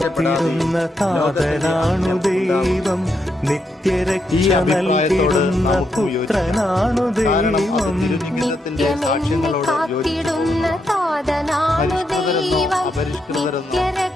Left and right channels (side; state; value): both; normal; correlation 0.81